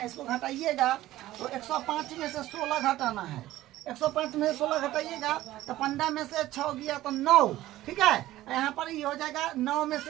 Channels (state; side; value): quieter; left; 15.4 dB